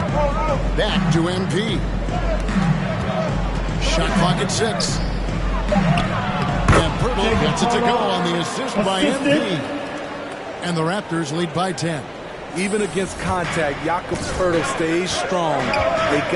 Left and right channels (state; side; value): identical; both; correlation 1.00